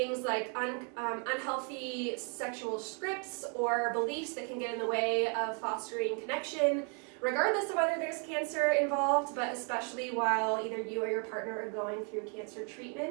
like unhealthy sexual scripts or beliefs that can get in the way of fostering connection, regardless of whether there's cancer involved, but especially while either you or your partner are going through cancer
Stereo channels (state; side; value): quieter; left; 38.4 dB